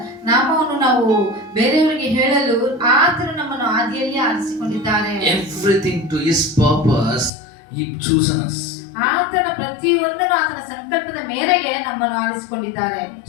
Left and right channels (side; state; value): right; drops out; at 7.3 s